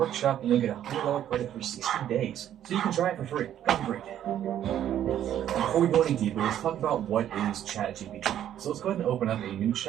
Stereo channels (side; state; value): left; quieter; 10.9 dB